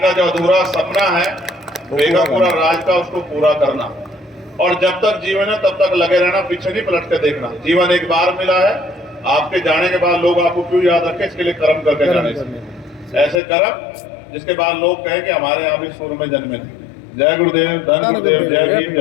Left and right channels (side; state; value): right; drops out; at 13.4 s